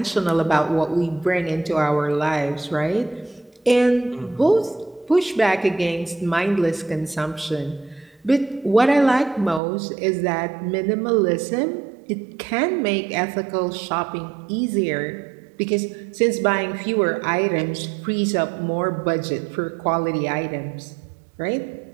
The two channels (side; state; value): left; drops out; at 9.6 s